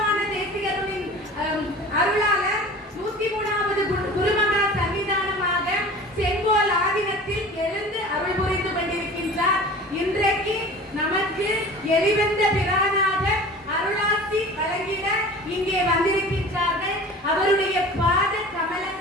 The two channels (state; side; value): normal; both; correlation 0.40